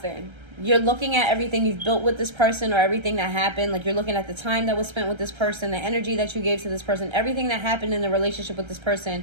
You're looking at everything you've built with this person or everything that happened. Like, you're looking at the time that was spent with this person, the energy that you gave to this person, everything that happened in the relationship with this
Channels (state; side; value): late; left; 1.3 ms